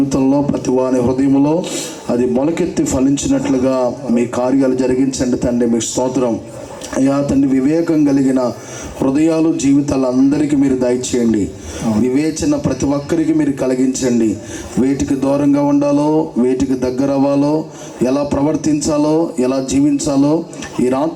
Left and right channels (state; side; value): identical; both; correlation 1.00